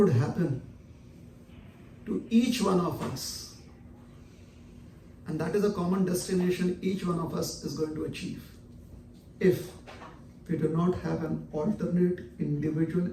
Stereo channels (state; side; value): identical; both; correlation 1.00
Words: happen to each one of us. And that is a common destination each one of us is going to achieve if we do not have an alternate individual